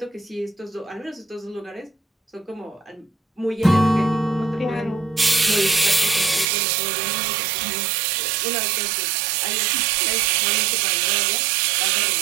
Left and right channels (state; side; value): drops out; left; at 6.5 s